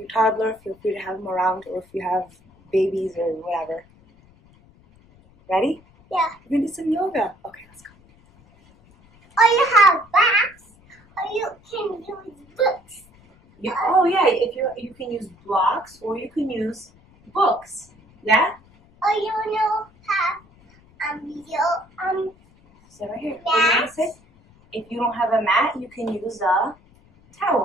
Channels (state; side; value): noise; left; rumble, 28 dB below the sound